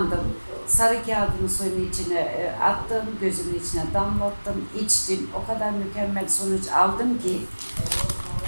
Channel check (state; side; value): inverted; both; correlation -1.00